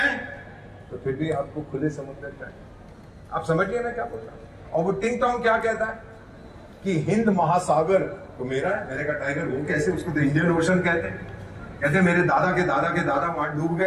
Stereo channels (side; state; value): both; identical; correlation 1.00